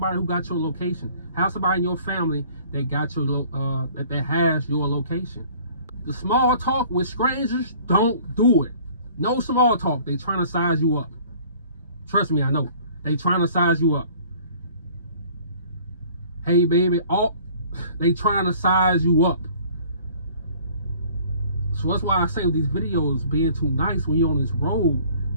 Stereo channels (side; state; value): both; inverted; correlation -0.52